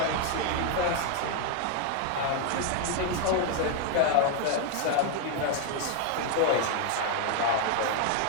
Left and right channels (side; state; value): both; different; correlation 0.01